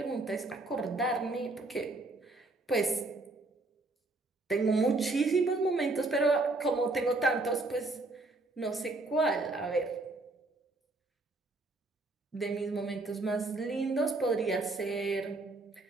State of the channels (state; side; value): quieter; left; 3.1 dB